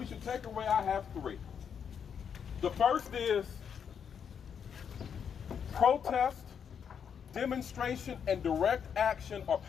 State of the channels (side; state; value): right; quieter; 7.5 dB